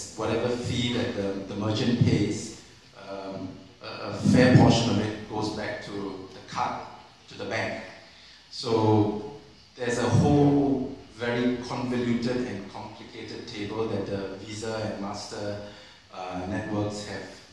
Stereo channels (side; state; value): both; identical; correlation 1.00